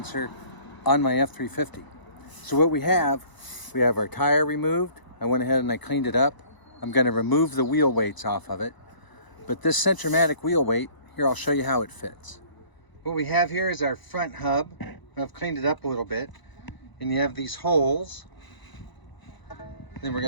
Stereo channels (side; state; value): right; late; 1.0 ms